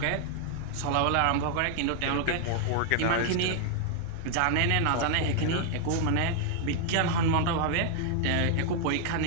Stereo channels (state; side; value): different; both; correlation 0.00